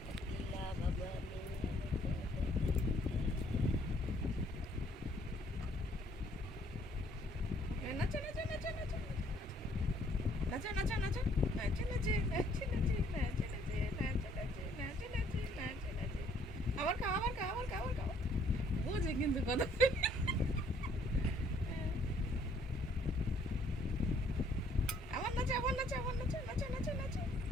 আবার খাও আবার খাও আবার খাও আবার খাও বুঝে কিন্তু কথা আবার নাচে আবার নাচে আবার নাচে নাচে নাচে নাচে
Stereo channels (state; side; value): normal; both; correlation 0.63